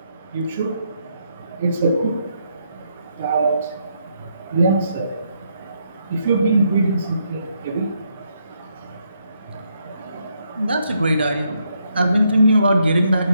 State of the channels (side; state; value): both; inverted; correlation -0.76